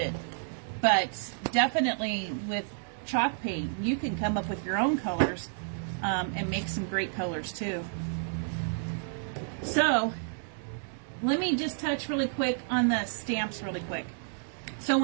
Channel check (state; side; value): silent; left; 57 dB below the other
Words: But definitely with chalk paint, you can come up with your own colors and make some great colors too. So let me just touch really quick on the stamps really quick. So